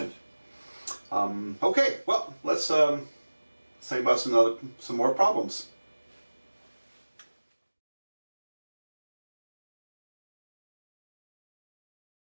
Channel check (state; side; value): inverted; both; correlation -1.00